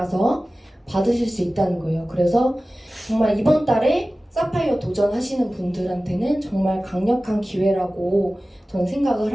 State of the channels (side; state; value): both; normal; correlation 0.96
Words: 받으실 수 있다는 거예요. 그래서 정말 이번 달에 사파이어 도전하시는 분들한테는 정말 강력한 기회라고 저는 생각을